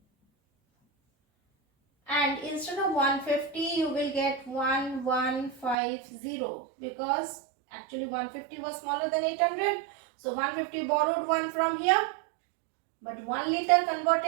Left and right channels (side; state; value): left; drops out; at 5.8 s